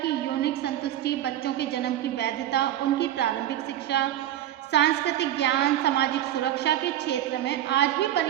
यौनिक संतुष्टि, बच्चों के जन्म की वैधता, उनकी प्रारंभिक शिक्षा, सांस्कृतिक ज्ञान, सामाजिक सुरक्षा के क्षेत्र में आज भी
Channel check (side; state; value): left; quieter; 12.3 dB